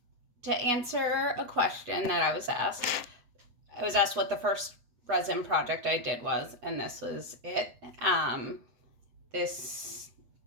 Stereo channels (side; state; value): left; late; 8.2 ms